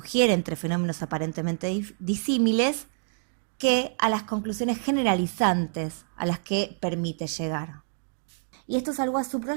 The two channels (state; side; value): silent; left; digital silence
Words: entre fenómenos aparentemente disímiles, que a las conclusiones generalizantes a las que permite llegar. Y esto es algo a